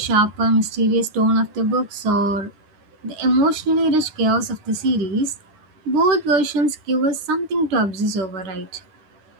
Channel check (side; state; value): left; late; 9.8 ms